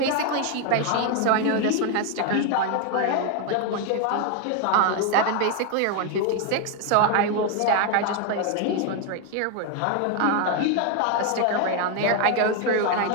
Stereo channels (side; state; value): both; different; correlation 0.01